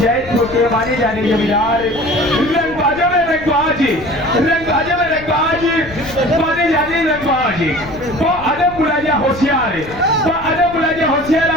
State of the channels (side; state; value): left; noise; rumble, 16 dB below the sound